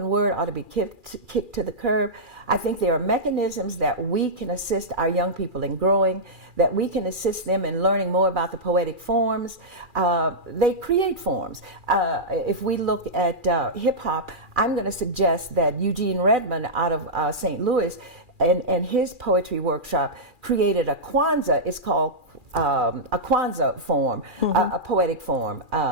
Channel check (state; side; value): late; left; 2.4 ms